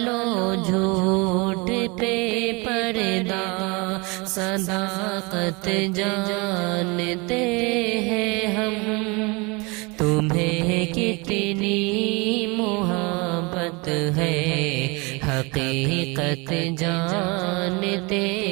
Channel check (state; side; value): quieter; left; 27.8 dB